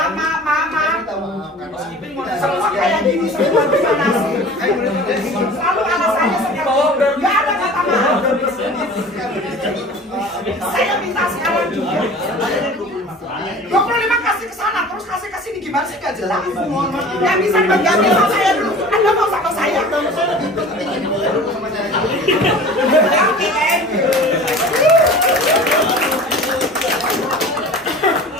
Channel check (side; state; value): both; normal; correlation 0.41